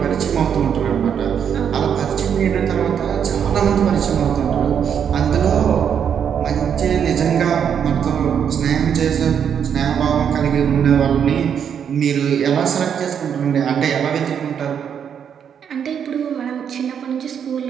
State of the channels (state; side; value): quieter; left; 8.0 dB